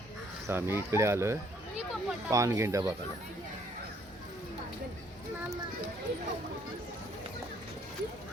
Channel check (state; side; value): normal; both; correlation 0.65